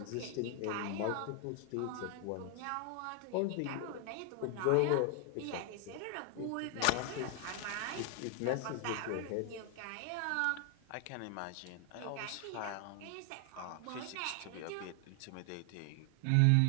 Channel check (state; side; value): different; both; correlation 0.00